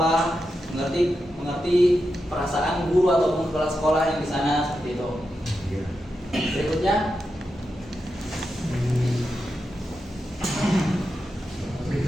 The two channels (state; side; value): normal; both; correlation 0.88